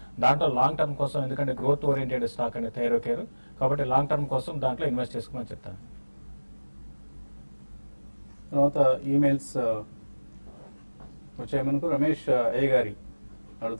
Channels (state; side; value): inverted; both; correlation -1.00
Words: దాంట్లో లాంగ్ టర్మ్ కోసం, ఎందుకంటే గ్రోత్ ఓరియంటెడ్ స్టాక్ అండి థైరోకేర్, కాబట్టి లాంగ్ టర్మ్ కోసం దాంట్లో ఇన్వెస్ట్ చేసుకోమని చెప్తాను. తర్వాత ఈమెయిల్స్ వచ్చాయి మనకు. రమేష్ ఏ గారి